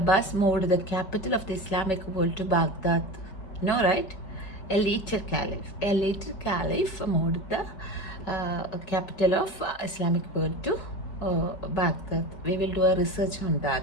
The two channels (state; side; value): late; right; 5.2 ms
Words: moved the capital of the Islamic world to Baghdad. No, right? A later caliph moved the capital of Islamic world to Baghdad. We will do a research on